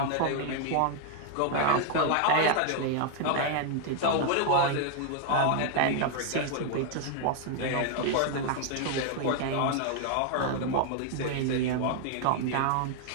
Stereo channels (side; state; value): both; different; correlation 0.00